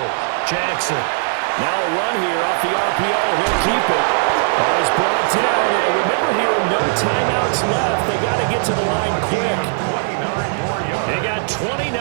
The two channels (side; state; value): left; silent; digital silence